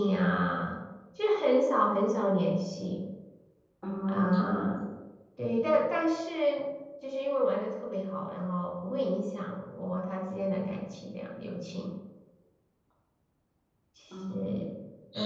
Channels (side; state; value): both; identical; correlation 1.00